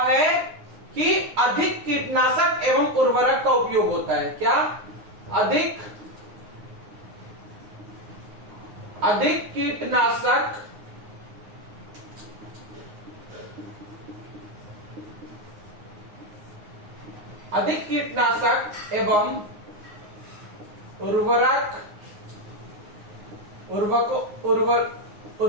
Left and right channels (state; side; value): late; left; 9.7 ms